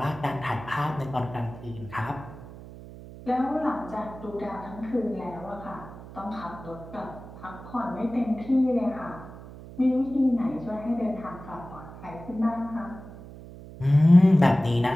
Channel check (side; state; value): right; noise; hum, 15 dB below the sound